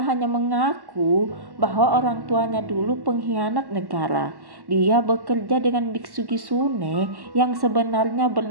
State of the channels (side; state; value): left; late; 1.1 ms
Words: hanya mengaku bahwa orang tuanya dulu pengkhianat negara. Dia bekerja dengan biksu Kisune yang sebenarnya